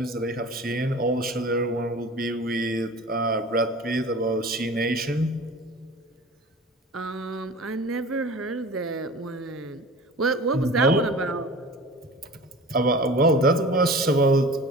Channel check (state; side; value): normal; both; correlation 0.39